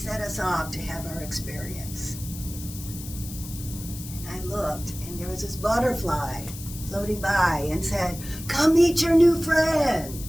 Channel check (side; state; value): left; noise; hiss, 13 dB below the sound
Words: us off to have our experience. And I looked, and there was this butterfly floating by and said, "Come meet your new friend."